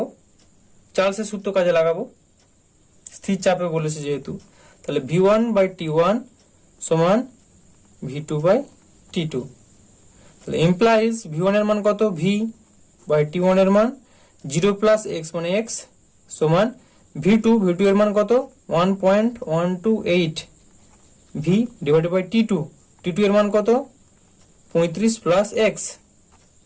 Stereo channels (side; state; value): both; identical; correlation 1.00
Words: চার্লসের সূত্র কাজে লাগাবো, স্থির চাপে বলেছে যেহেতু, তাহলে V1/T1 সমান V2/T2, তাহলে ইমপ্লাইজ V1 এর মান কত, V/T1 এর মান 0 প্লাস x মানে x সমান V2 এর মান কত 1.128 V ডিভাইডেড বাই T2 এর মান কত 35 প্লাস x,